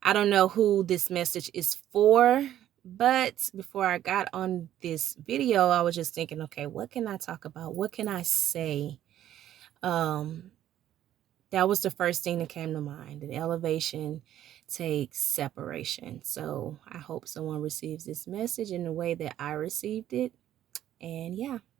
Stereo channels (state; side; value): quieter; left; 11.9 dB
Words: I don't know who this message is for, but before I got on this video, I was just thinking, okay, what can I talk about? What can I say? Um, that was the first thing that came to mind. That elevation takes separation. So I hope someone receives this message in the way that I received it. And yeah,